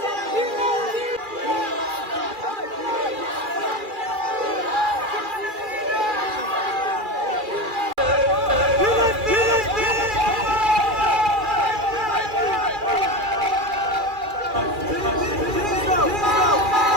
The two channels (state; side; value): late; left; 2.4 ms